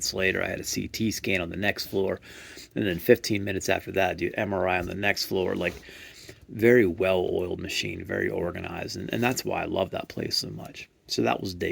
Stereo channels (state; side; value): identical; both; correlation 1.00